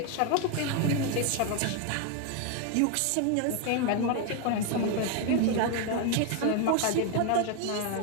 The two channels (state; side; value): different; both; correlation 0.01